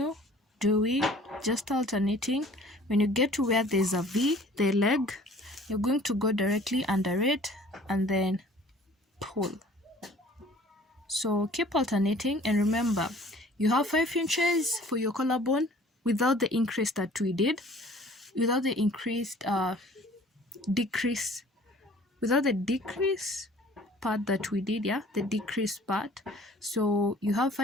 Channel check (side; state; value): both; normal; correlation 0.51